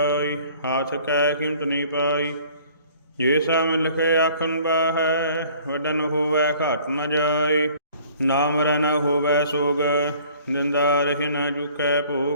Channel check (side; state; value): both; inverted; correlation -0.53